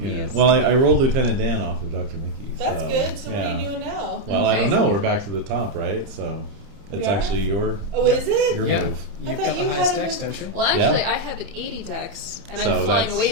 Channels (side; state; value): left; late; 30 ms